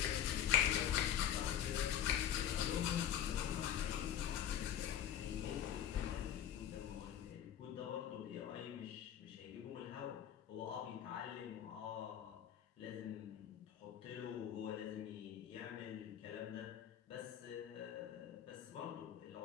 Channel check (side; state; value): right; quieter; 10.1 dB